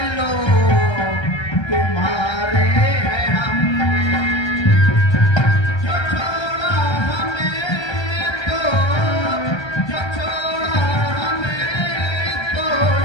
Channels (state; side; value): late; right; 1.3 ms